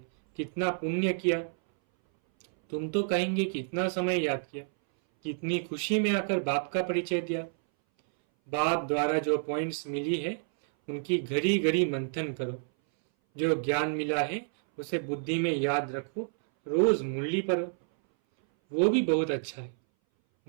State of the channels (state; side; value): silent; left; 58 dB below the other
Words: कितना पुण्य किया। तुम तो कहेंगे कितना समय याद किया, कितनी खुशी में आकर बाप का परिचय दिया। बाप द्वारा जो पॉइंट्स मिली है उनकी घड़ी घड़ी मंथन करो। जो ज्ञान मिला है उसे बुद्धि में याद रखो, रोज मुरली पढ़ो, वो भी बहुत अच्छा है।